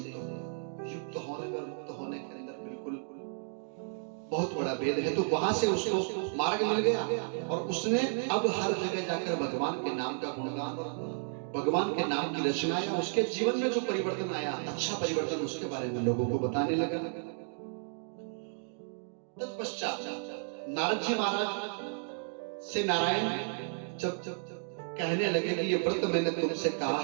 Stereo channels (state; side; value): silent; left; digital silence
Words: होने और मुक्त होने के अंदर बिल्कुल बहुत बड़ा भेद है। तो वहां से उसको मार्ग मिल गया और उसने अब हर जगह जाकर भगवान के नाम का गुणगान और भगवान के नाम की रचना आया। उसके जीवन में जो परिवर्तन आया, अच्छा परिवर्तन, उसके बारे में लोगों को बताने लगा। तत्पश्चात नारद जी महाराज से नारायण जब कहने लगे कि ये व्रत मैंने तुमसे कहा